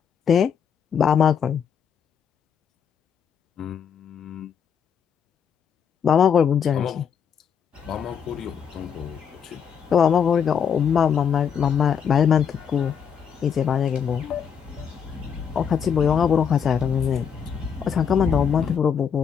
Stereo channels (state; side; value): quieter; right; 7.5 dB